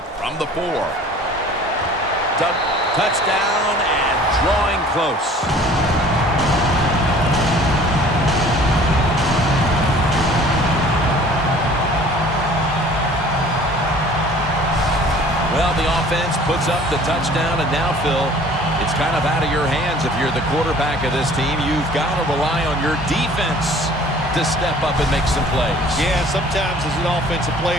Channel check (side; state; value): both; normal; correlation 0.50